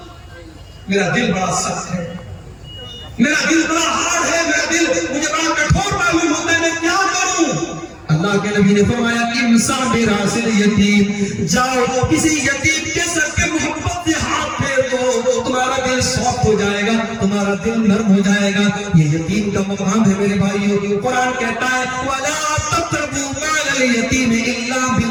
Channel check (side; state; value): both; identical; correlation 1.00